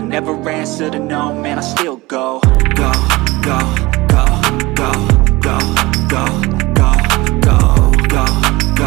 answer to no, man, I still go. Go, go, go, go, go, go, go, go, go,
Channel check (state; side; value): quieter; left; 21.3 dB